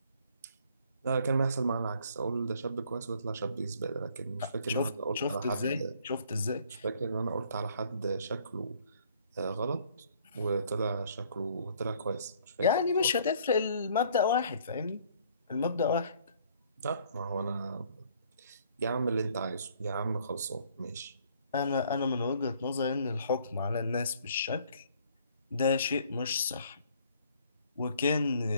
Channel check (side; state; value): both; inverted; correlation -0.60